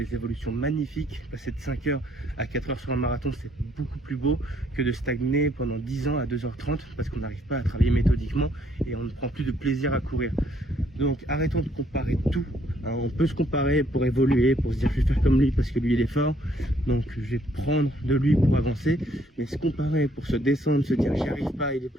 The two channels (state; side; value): normal; both; correlation 0.67